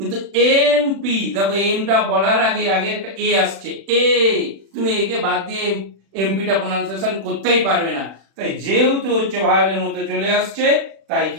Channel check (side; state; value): left; late; 36 ms